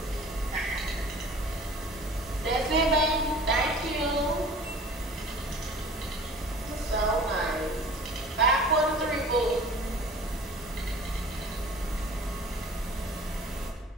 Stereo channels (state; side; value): normal; both; correlation 0.44